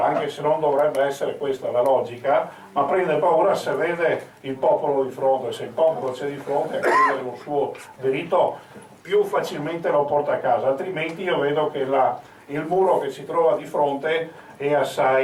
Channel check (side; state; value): both; identical; correlation 1.00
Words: anche se non dovrebbe essere questa la logica, ma prende paura se vede il popolo di fronte. Se il popolo c'è di fronte a chiedere un suo diritto, più facilmente lo porta a casa, altrimenti io vedo che il muro che si trova di fronte è